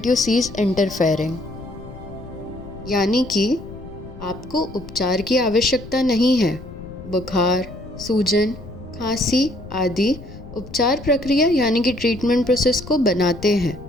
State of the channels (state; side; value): noise; left; rumble, 15 dB below the sound